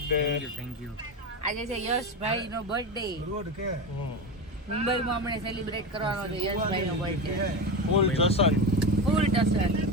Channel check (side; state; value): both; normal; correlation 0.20